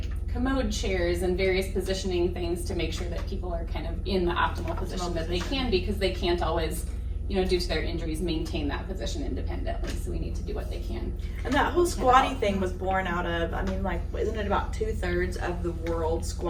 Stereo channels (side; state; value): both; identical; correlation 1.00